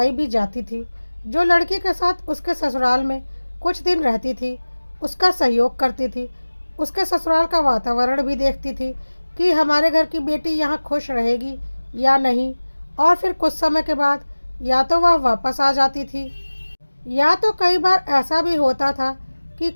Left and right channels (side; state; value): both; inverted; correlation -1.00